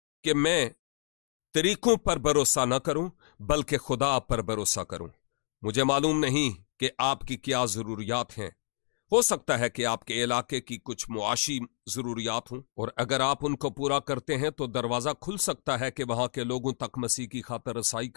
कि मैं तरीकों पर भरोसा न करूं बल्कि खुदा पर भरोसा करूं। मुझे मालूम नहीं कि आपकी क्या जरूरियात हैं। हो सकता है कि आपके इलाके की कुछ मुआशी जरूरियात हों और अगर आप उनको पूरा करते हैं तो दरवाजा खुल सकता है कि वहां के लोगों तक मसीह की खातर रसाई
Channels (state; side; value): silent; right; digital silence